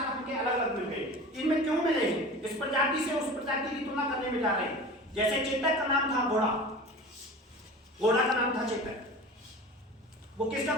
हमके अलग अलग मिल गए। इनमें क्यों मिले हैं? इस प्रजाति से उस प्रजाति की तुलना करने में जा रहे हैं। जैसे चेतक का नाम था घोड़ा, घोड़ा का नाम था चेतक। वो किसका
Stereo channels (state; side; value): normal; both; correlation 0.36